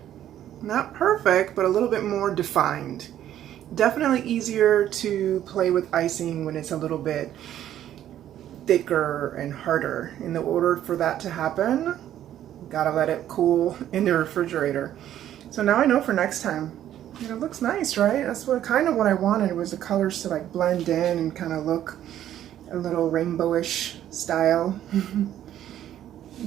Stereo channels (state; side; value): quieter; left; 11.5 dB